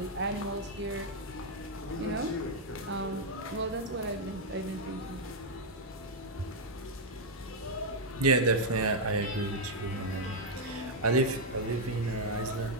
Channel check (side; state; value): both; normal; correlation -0.01